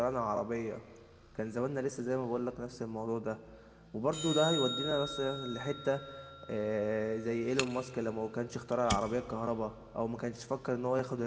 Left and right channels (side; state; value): both; identical; correlation 1.00